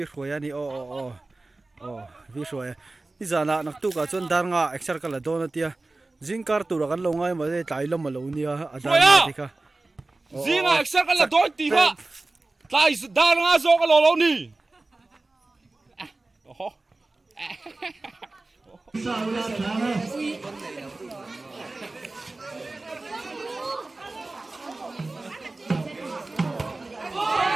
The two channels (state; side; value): quieter; left; 3.2 dB